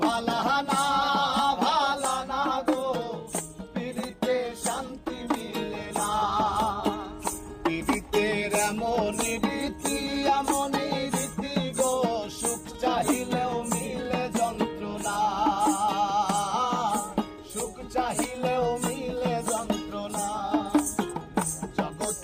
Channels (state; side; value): identical; both; correlation 1.00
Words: ভালা না ভালা না গো, পীড়িতে শান্তি মিলে না। পীড়িতের এমন রীতি এমন রীতি গো, সুখ চাহিলেও মিলে যন্ত্রণা, সুখ চাহিলেও মিলে যন্ত্রণা।